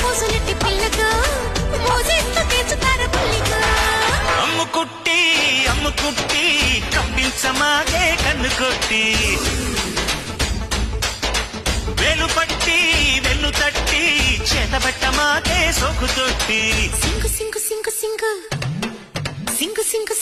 పిల్లకు మోజేస్తూ తీర్చుతారు పుల్లికు. అమ్ముకుట్టి కప్పించమాగే కన్ను కొట్టి వేలు పట్టి వెన్ను తట్టి చేతబట్టమాగే సోకు తొట్టి సింగు సింగు సింగు సింగు సింగు సింగు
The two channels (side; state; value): both; identical; correlation 1.00